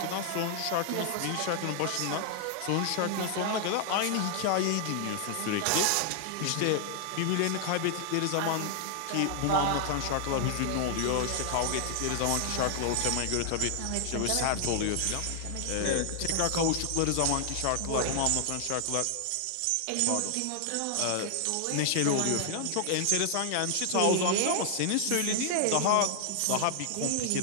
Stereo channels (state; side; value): different; both; correlation 0.00